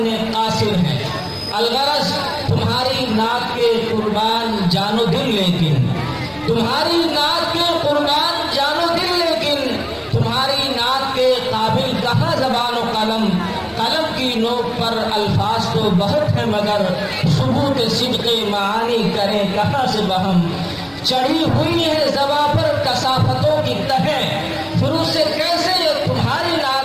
कासिर हैं। अलगरज तुम्हारी नाक के कुर्बान जानो दिल, लेकिन तुम्हारी नाक के कुर्बान जानो दिल, लेकिन तुम्हारी नाक के काबिल कहाँ ज़बान व कलम। कलम की नोक पर अल्फाज तो बहुत है, मगर सुबूत सिद्क़े मानी करें कहाँ से बहम। चढ़ी हुई है ज़बा पर कसाफतों की तहें, फिर उसे कैसे ये तुम्हारी नाक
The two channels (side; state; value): both; identical; correlation 1.00